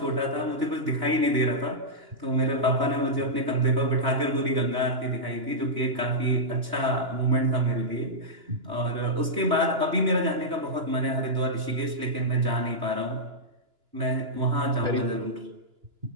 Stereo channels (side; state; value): left; late; 2.9 ms